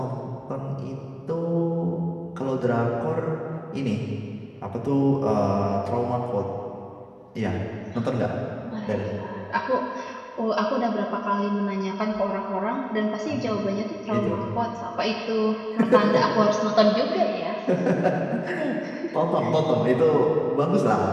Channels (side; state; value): both; identical; correlation 1.00